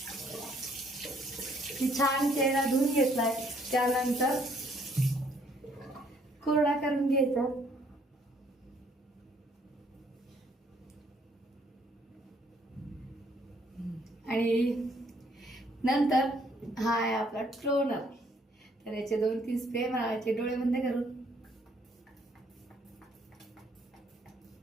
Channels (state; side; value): normal; both; correlation 0.65